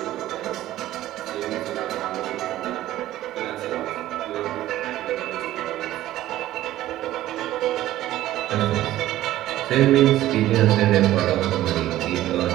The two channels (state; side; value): quieter; left; 14.5 dB